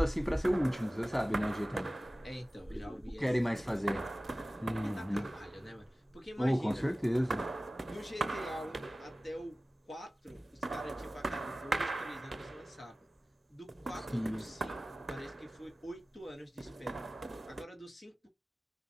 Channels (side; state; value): both; normal; correlation 0.97